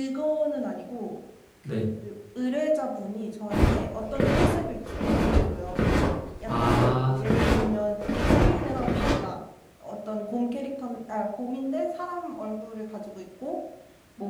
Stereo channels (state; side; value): identical; both; correlation 1.00